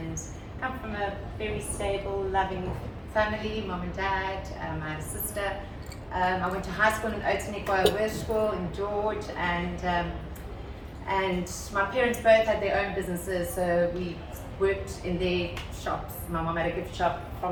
come from a very stable, loving family, mom and dad. I had a sister. I went to high school in Oudtshoorn School in George, and my parents both had their own businesses, so we worked in their shops. My mom had a gift shop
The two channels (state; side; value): identical; both; correlation 1.00